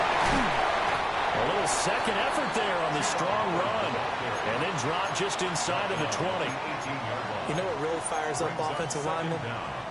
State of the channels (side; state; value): both; identical; correlation 1.00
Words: A little second effort there on the strong run. And then drop just inside of the 20. You know what really fires up offensive linemen?